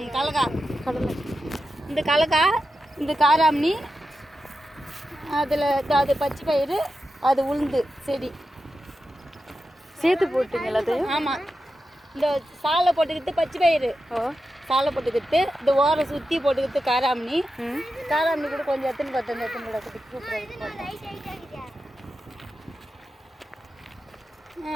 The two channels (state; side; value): normal; both; correlation 0.90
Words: கலக்கா கடலை, இந்த கலக்கா, இந்த காராமணி, அதில் அது பச்சை பயிறு, அது உளுந்து செடி சேர்த்து போட்டீங்க எல்லாத்தையும்? ஆமாம். இந்த சாலை போட்டுக்கிட்டு பச்சை பயிறு, சாலை போட்டுக்கிட்டு இந்த ஓரை சுற்றி போட்டுக்கிட்டு காராமணி, காராமணி கூட கொஞ்சம் எத்தனை கூட